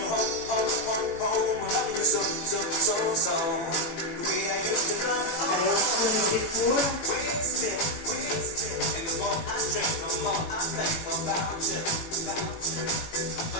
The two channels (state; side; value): late; right; 18 ms